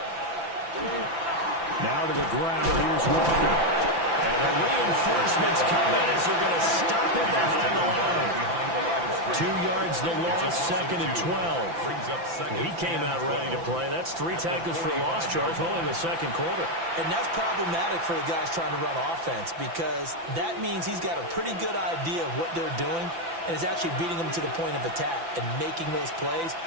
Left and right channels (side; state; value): left; late; 5.9 ms